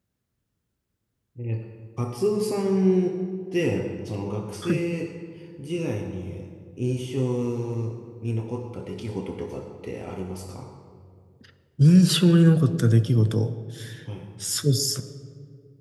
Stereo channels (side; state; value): both; identical; correlation 1.00